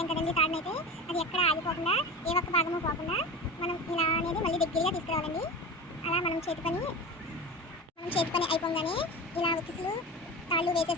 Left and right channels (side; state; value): both; normal; correlation 0.29